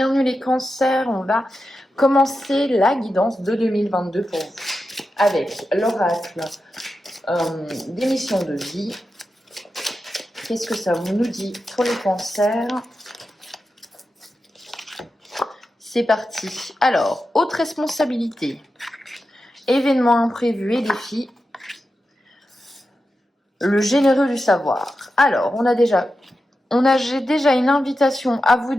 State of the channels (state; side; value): normal; both; correlation 0.90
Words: les cancers, on va commencer la guidance de 2022 pour vous avec l'oracle des missions de vie. Qu'est-ce que ça nous dit pour les cancers? C'est parti. Alors, haute responsabilité, événements imprévus et défis, le généreux du savoir. Alors, j'ai déjà une invitation à vous